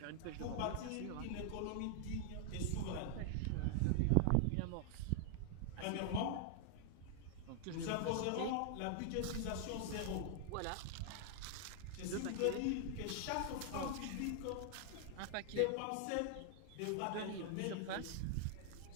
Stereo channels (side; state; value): both; different; correlation 0.00